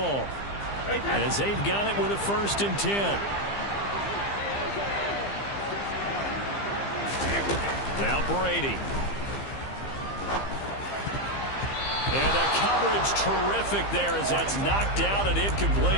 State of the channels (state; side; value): late; right; 15 ms